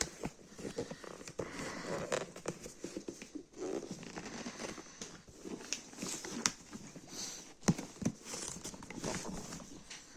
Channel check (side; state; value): both; identical; correlation 1.00